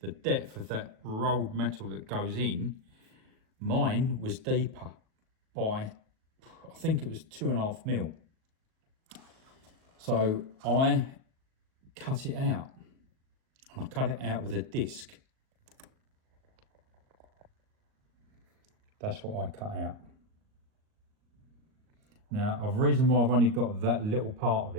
the depth of that rolled metal that goes in, mine was deeper by, I think it was 2.5 mil. So I cut it out, and I cut it out with a disc. That's what I cut out. Now, the reason why I've only got that little part of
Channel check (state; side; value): late; left; 38 ms